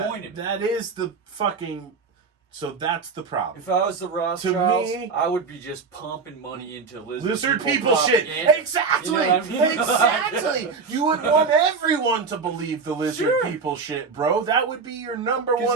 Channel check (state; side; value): quieter; left; 5.0 dB